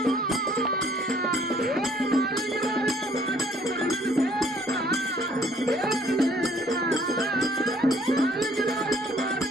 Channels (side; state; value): right; noise; rumble, 30 dB below the sound